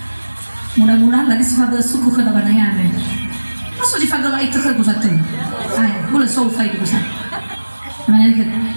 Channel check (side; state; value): both; inverted; correlation -1.00